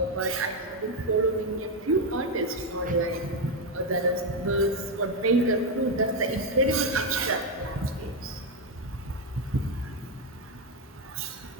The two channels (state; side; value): normal; both; correlation 0.05